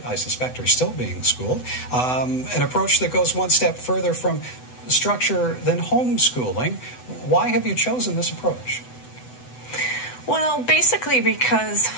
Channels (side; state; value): right; late; 8.0 ms